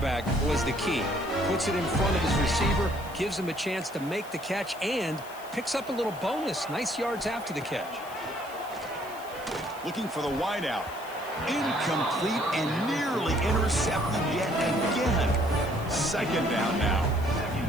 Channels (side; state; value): left; noise; hiss, 19 dB below the sound